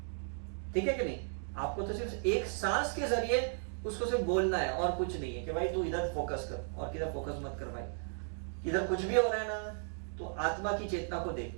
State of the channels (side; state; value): left; silent; 54 dB below the other